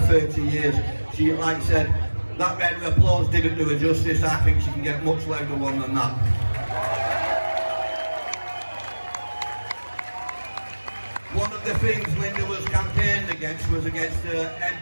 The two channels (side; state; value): both; inverted; correlation -1.00